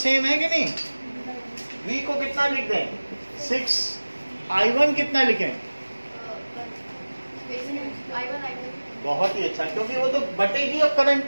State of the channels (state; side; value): inverted; both; correlation -1.00